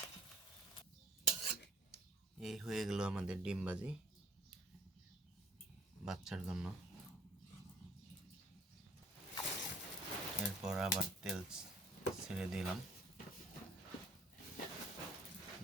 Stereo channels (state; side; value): normal; both; correlation 0.55